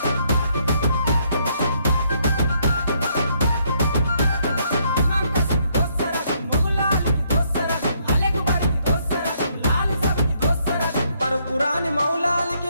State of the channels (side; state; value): both; inverted; correlation -0.72